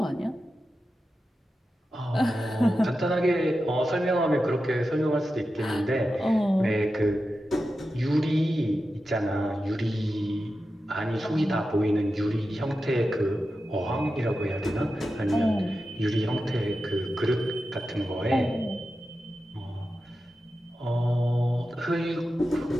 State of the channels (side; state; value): both; normal; correlation 0.91